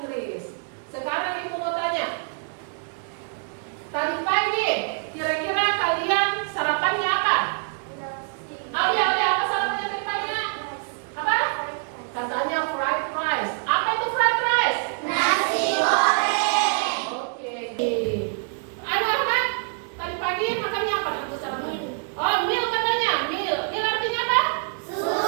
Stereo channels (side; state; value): left; silent; 58 dB below the other